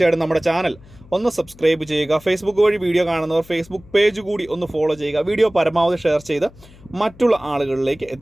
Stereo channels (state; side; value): noise; left; hum, 23 dB below the sound